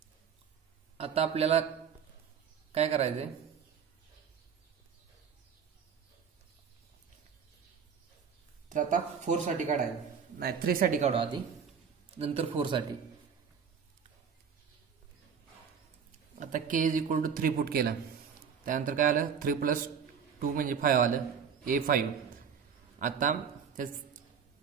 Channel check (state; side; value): quieter; left; 6.9 dB